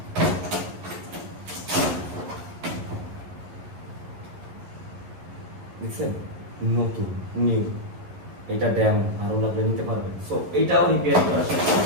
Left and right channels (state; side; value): late; left; 11 ms